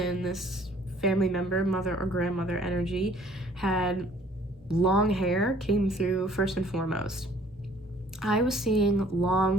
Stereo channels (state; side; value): normal; both; correlation 0.57